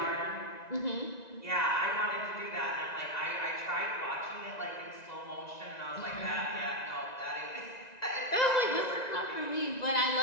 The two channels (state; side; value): late; right; 1.9 ms